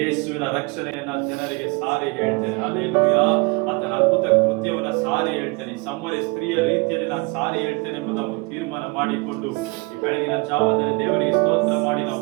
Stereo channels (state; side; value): quieter; left; 28.3 dB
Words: ರಕ್ಷಣೆಯನ್ನ ಜನರಿಗೆ ಸಾರಿ ಹೇಳ್ತೇನೆ. ಹಲ್ಲೆಲೂಯಾ, ಆತನ ಅದ್ಭುತ ಕೃತ್ಯವನ್ನ ಸಾರಿ ಹೇಳ್ತೇನೆ. ಸಮರ್ಯ ಸ್ತ್ರೀಯ ರೀತಿಯಲ್ಲಿ ನಾನು ಸಾರಿ ಹೇಳ್ತೇನೆ ಎಂಬುದನ್ನು ತೀರ್ಮಾನ ಮಾಡಿಕೊಂಡು ಈ ಬೆಳಗಿನ ಜಾವದಲ್ಲಿ ದೇವರಿಗೆ ಸ್ತೋತ್ರ ಮಾಡಿ